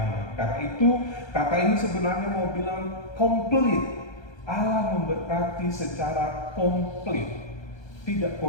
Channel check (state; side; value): late; right; 1.3 ms